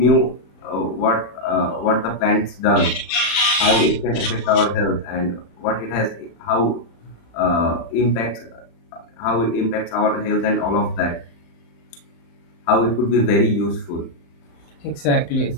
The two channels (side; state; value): right; late; 35 ms